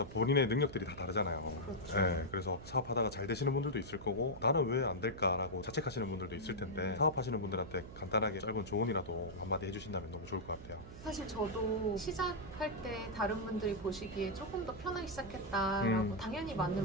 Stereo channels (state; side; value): noise; right; hum, 14 dB below the sound